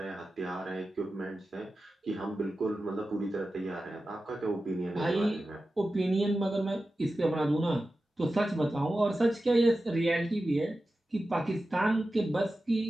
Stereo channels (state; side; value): normal; both; correlation 0.93